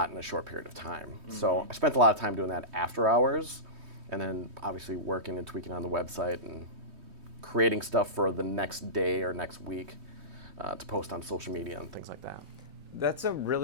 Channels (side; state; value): left; late; 3.2 ms